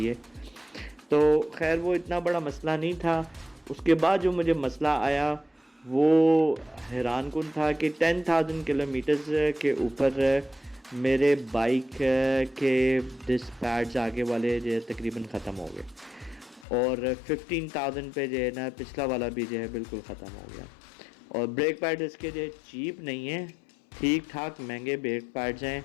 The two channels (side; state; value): right; drops out; at 16.7 s